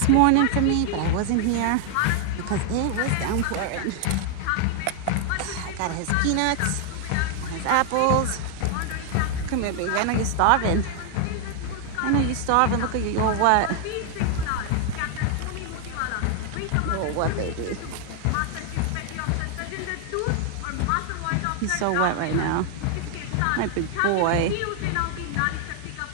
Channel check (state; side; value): different; both; correlation 0.00